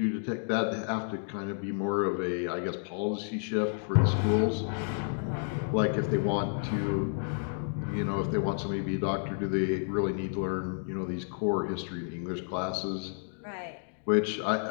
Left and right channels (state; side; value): silent; right; digital silence